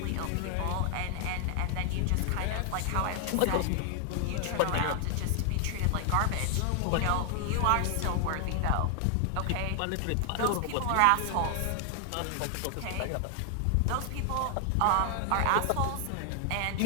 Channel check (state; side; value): different; both; correlation 0.00